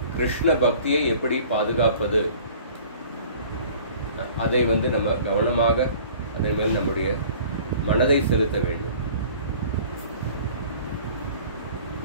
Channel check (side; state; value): both; inverted; correlation -0.48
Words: கிருஷ்ண பக்தியை எப்படி பாதுகாப்பது, அதை வந்து நம்ம கவனமாக அதே மேல் நம்முடைய மனதை செலுத்த வேண்டும்.